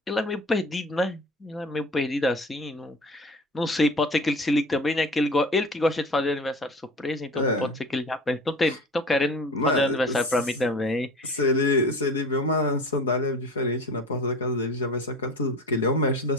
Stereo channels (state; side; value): normal; both; correlation 0.38